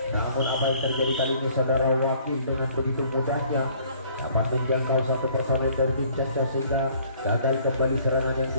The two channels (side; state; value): both; inverted; correlation -0.58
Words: Namun apa yang terjadi kali ini saudara Wakil dengan begitu mudahnya dapat menjangkau satu personel dari tim Castos sehingga gagal kembali serangan yang